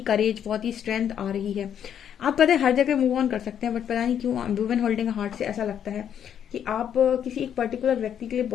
करेज, बहुत ही स्ट्रेंथ आ रही है। आप पता है हर जगह मूव ऑन कर सकते हैं, बट पता नहीं क्यों वुमेन होल्डिंग हार्ट से ऐसा लगता है कि आप किसी एक पर्टिकुलर व्यक्ति के लिए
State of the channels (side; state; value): right; quieter; 9.1 dB